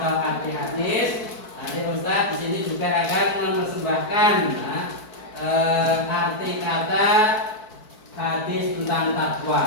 arti hadis, nanti Ustaz di sini juga akan mempersembahkan arti kata hadis tentang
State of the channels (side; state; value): right; late; 4.6 ms